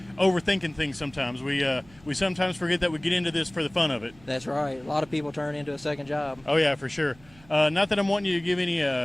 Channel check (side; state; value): right; noise; hum, 26 dB below the sound